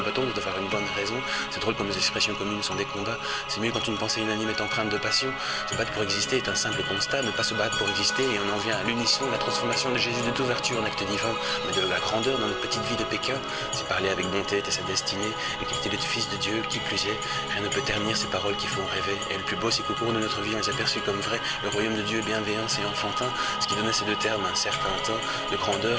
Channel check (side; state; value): both; identical; correlation 1.00